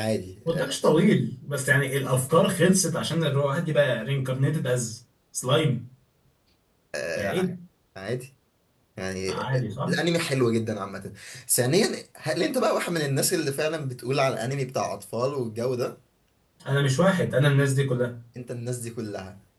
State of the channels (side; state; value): both; identical; correlation 1.00